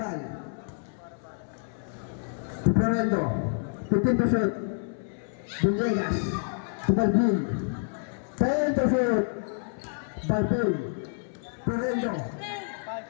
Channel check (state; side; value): silent; right; 59 dB below the other